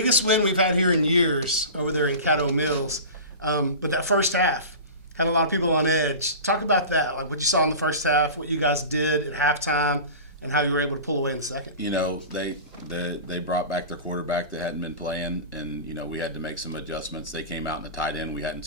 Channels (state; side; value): inverted; both; correlation -0.33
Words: win we've had here in years over there in Caddo Mills. But that first half had a lot of people on edge. Talk about that, like what you saw in the first half, what you guys did at halftime, and how you were able to pull away in the second. You know, they brought back their quarterback that hadn't been playing, and, you know, we had to make some adjustments. They came out in a tight end. We hadn't